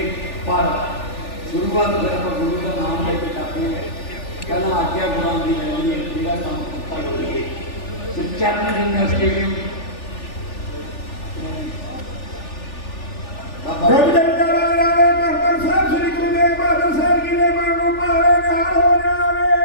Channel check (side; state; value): right; late; 3.4 ms